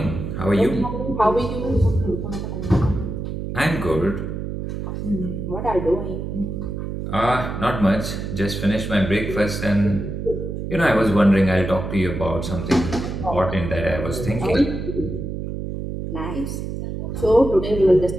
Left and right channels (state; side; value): noise; right; hum, 5 dB below the sound